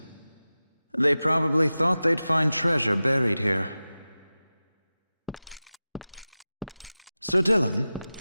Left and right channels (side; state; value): both; inverted; correlation -0.96